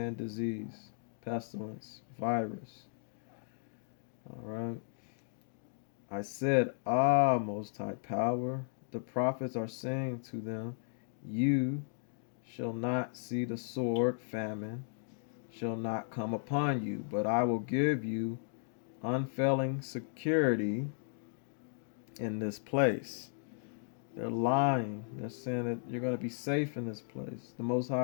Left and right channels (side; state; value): right; silent; digital silence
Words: disease, pestilence, virus. All right. I said, Ah, Most High Power, the prophets are saying to them, You shall not see the sword, famine, shall not come upon you, but I will give you unfailing security in this place. They're lying. They're saying that you're going to be safe in this place. The Most